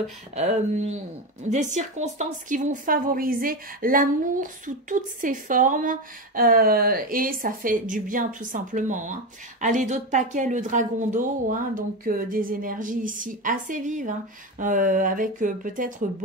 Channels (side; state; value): both; normal; correlation 0.17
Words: des circonstances qui vont favoriser l'amour sous toutes ses formes et ça fait du bien tout simplement. Hein. Allez, d'autres paquets, le dragon d'eau. Hein, donc des énergies ici assez vives, hein, avec peut-être